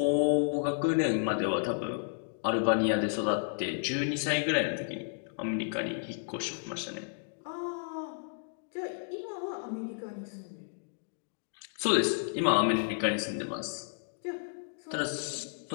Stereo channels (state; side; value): silent; right; digital silence